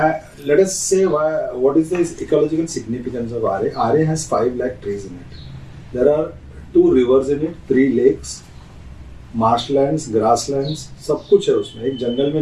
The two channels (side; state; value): both; identical; correlation 1.00